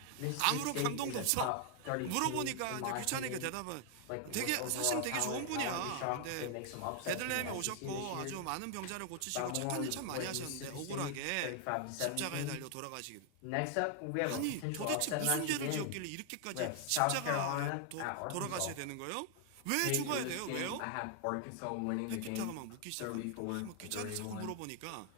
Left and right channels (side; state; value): both; different; correlation 0.00